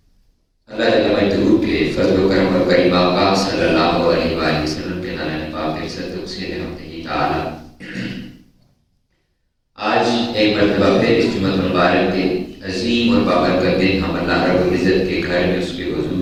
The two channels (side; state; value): both; identical; correlation 1.00